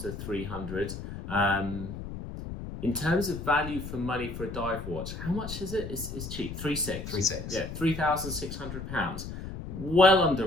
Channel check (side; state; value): left; noise; rumble, 8 dB below the sound